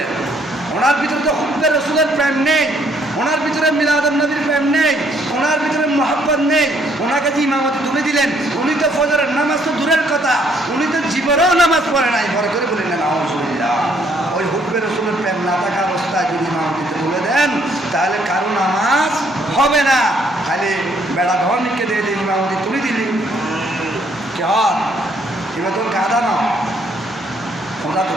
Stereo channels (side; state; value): both; normal; correlation 0.67